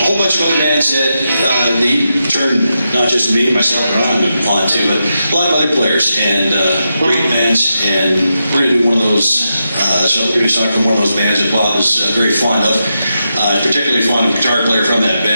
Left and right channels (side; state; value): both; inverted; correlation -0.87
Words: whole bunch of other bands that he turned not just me, myself, and Ron on to, but a lot of other players and great bands. And we're going to do one of those. So we're going to do a song from one of those bands that Bob is very fond of. Particularly fond of a guitar player from that